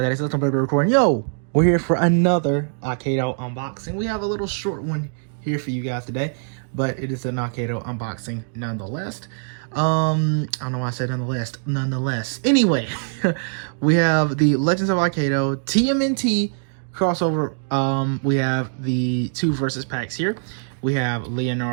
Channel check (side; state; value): left; silent; digital silence